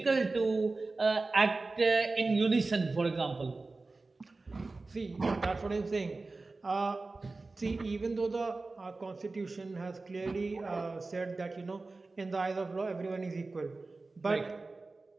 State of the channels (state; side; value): quieter; left; 3.5 dB